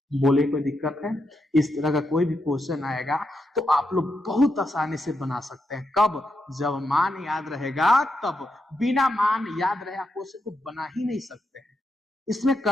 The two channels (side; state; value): both; normal; correlation 0.84